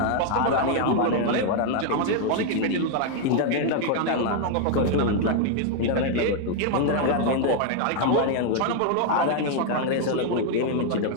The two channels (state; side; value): different; both; correlation 0.00